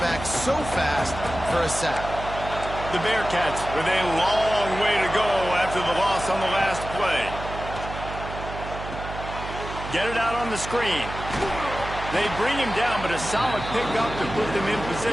so fast for a sack. The Bearcats with a long way to go after the loss on the last play. Get it out on the screen. They bring him down, but a solid pickup to put them in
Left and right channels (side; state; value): right; noise; hum, 9 dB below the sound